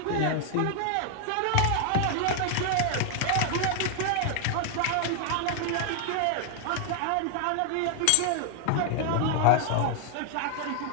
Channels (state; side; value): different; both; correlation 0.00